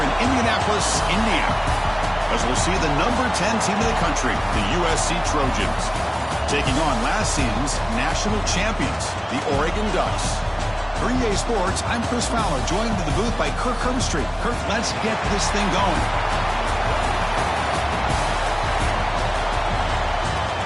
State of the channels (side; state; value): both; identical; correlation 1.00